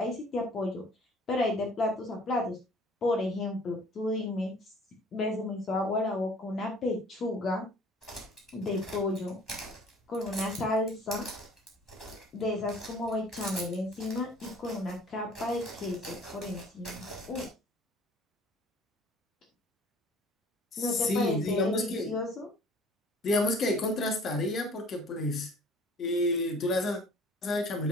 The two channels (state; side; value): normal; both; correlation 0.51